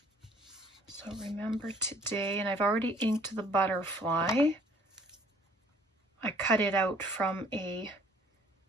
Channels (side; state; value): both; normal; correlation 0.57